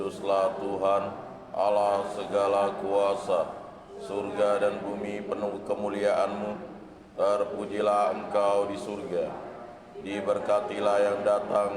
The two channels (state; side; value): identical; both; correlation 1.00